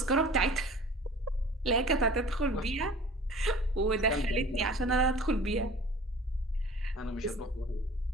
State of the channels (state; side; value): normal; both; correlation 0.44